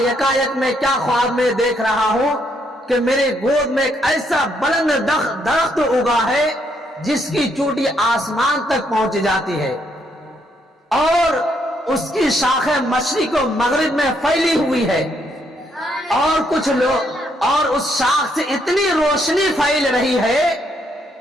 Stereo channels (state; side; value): normal; both; correlation 0.73